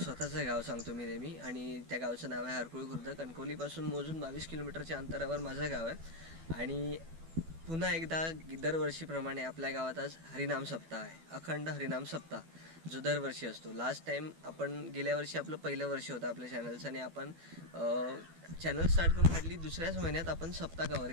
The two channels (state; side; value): late; left; 12 ms